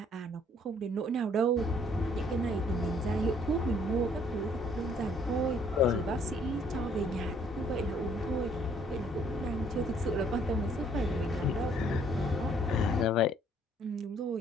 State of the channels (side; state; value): both; normal; correlation 0.63